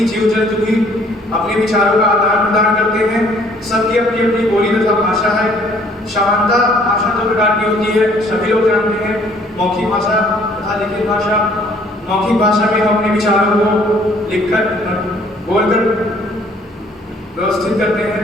जीव जंतु भी अपने विचारों का आदान प्रदान करते हैं। सबकी अपनी अपनी बोली तथा भाषा है। समानता भाषा दो प्रकार की होती है, सभी लोग जानते हैं, मौखिक भाषा तथा लिखित भाषा। मौखिक भाषा में हम अपने विचारों को लिखकर, बोलकर व्यवस्थित करते हैं।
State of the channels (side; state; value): both; normal; correlation 0.59